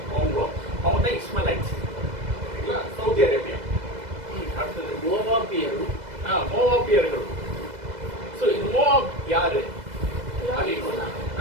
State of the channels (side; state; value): left; late; 2.0 ms